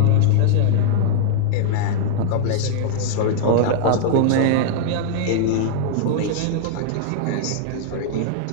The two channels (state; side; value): different; both; correlation -0.01